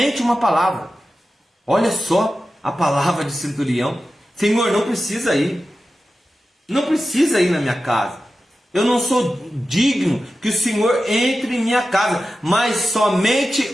uma palavra. Olha só a palavra de centurião. Senhor, não precisa ir. Não precisa ir na minha casa. Eu não sou digno que o Senhor entre em minha casa, mas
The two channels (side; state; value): both; normal; correlation 0.93